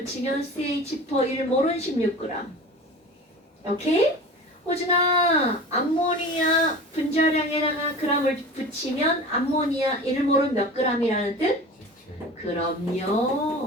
CH4 1몰은 16g. 오케이? 호준아, 암모니아 분자량에다가 그람을 붙이면 암모니아 1몰은 몇 g이라는 뜻? 17.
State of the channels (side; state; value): both; normal; correlation 0.36